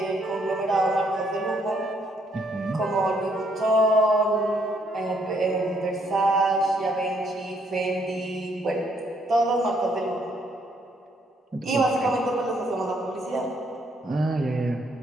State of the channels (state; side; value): normal; both; correlation 0.70